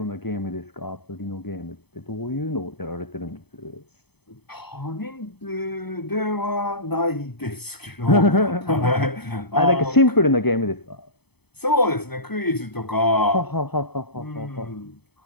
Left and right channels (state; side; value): late; right; 0.98 ms